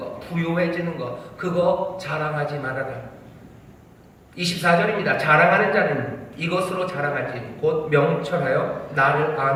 부유해지는 거, 그거 자랑하지 말아라. 24절입니다. 자랑하는 자는 이것으로 자랑하지, 곧 명철하여 나를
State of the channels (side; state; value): both; identical; correlation 1.00